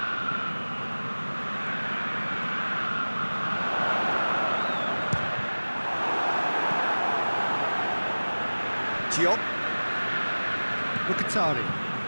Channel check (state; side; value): inverted; both; correlation -1.00